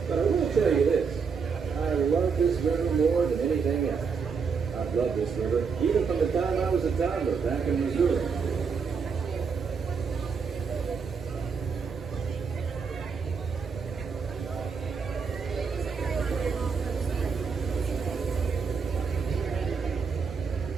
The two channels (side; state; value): left; quieter; 5.7 dB